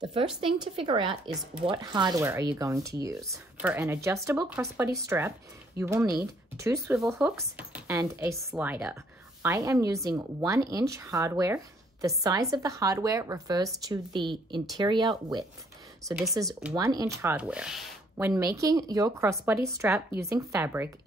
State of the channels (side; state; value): both; normal; correlation 0.65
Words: The first thing to figure out is what hardware are you going to use. For an adjustable crossbody strap, you will need 2 swivel hooks and a slider. I am using 1-inch hardware. The size of the hardware refers to the interior width. So this is 1-inch hardware. When making your crossbody strap using fabric,